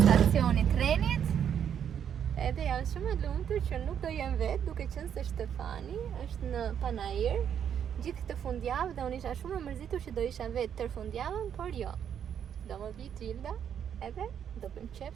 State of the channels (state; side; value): quieter; left; 8.7 dB